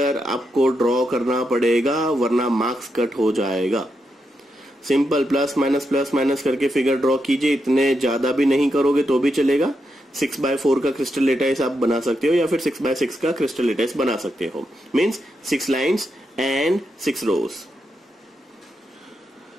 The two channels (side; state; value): both; normal; correlation 0.84